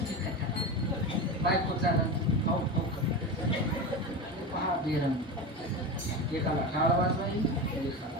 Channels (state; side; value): normal; both; correlation 0.22